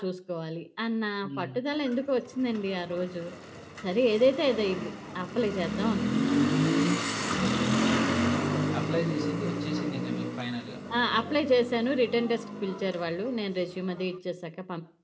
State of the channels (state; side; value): identical; both; correlation 1.00